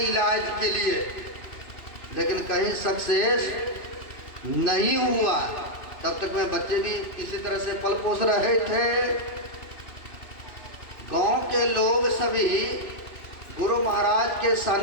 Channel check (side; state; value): right; late; 2.9 ms